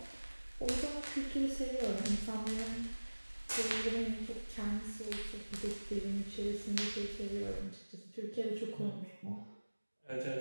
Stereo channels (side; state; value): both; inverted; correlation -1.00